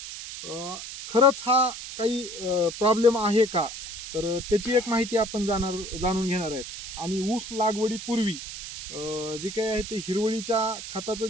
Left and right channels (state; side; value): noise; right; hiss, 9 dB below the sound